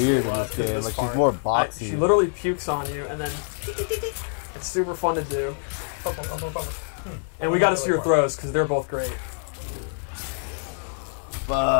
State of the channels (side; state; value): right; silent; 61 dB below the other